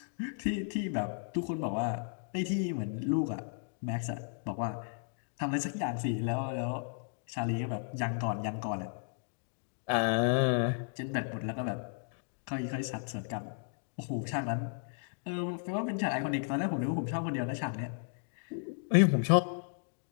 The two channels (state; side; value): silent; right; digital silence